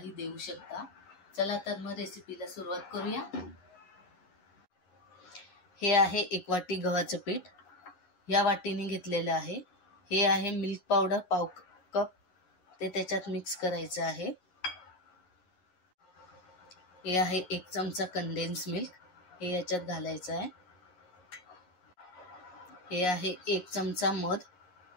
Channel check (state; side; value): late; right; 11 ms